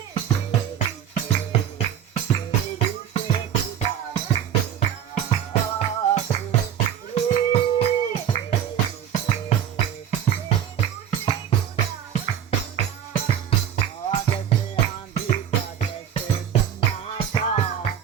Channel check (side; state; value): left; quieter; 9.6 dB